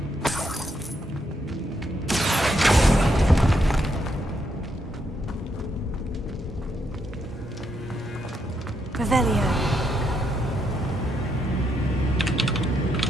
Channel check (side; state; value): both; normal; correlation 0.78